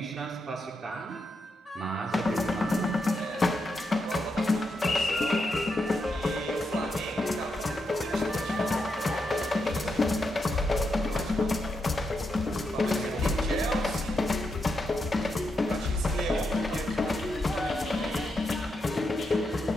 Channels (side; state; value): both; normal; correlation 0.84